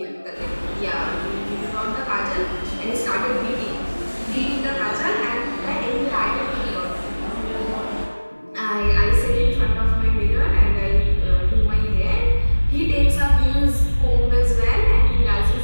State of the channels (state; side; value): inverted; both; correlation -1.00